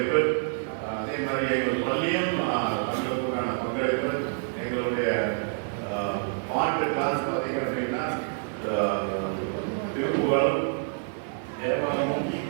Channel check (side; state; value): left; silent; 57 dB below the other